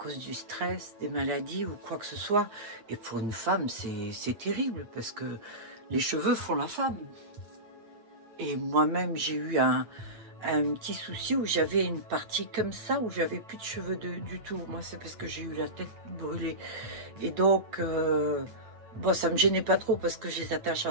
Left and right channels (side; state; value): left; late; 8.6 ms